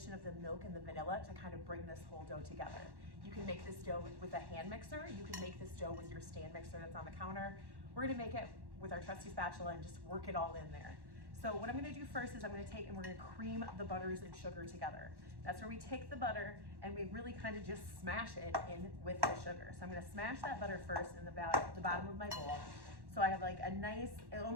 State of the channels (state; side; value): late; left; 1.1 ms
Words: of the milk and the vanilla to kind of bring this whole dough together. You can make this dough with a hand mixer. You can make this dough with your stand mixer that's on the counter. We're gonna make it with our trusty spatula and just work it all in there. So what I'm gonna do first is I'm gonna take and we're gonna cream the butters and sugar together. That's where we take the butter and we really kind of just smash it in with the sugar. So I'm gonna smash that butter first in the bottom of my bowl. So I have like a nice, it